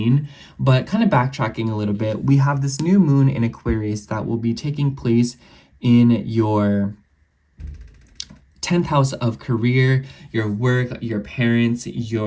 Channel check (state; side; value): identical; both; correlation 1.00